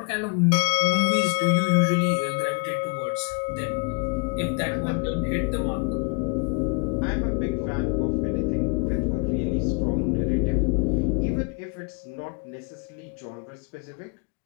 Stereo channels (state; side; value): quieter; right; 35.2 dB